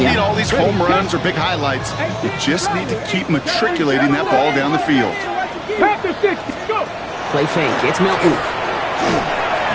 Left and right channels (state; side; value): identical; both; correlation 1.00